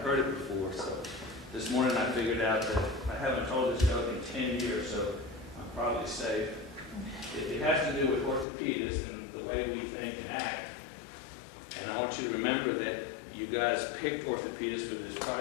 heard it before. So this morning I figured out that I haven't told this joke in 10 years, so I'm probably safe. It has to do with orthopedists and the way we think and act. And I want you to remember that you guys picked orthopedists for this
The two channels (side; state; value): right; drops out; at 8.5 s